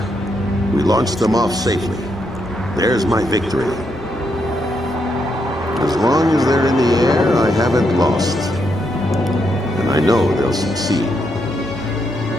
we launched them off safely. There's my victory. As long as they're in the air, I haven't lost. And I know they'll succeed.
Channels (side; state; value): both; normal; correlation 0.79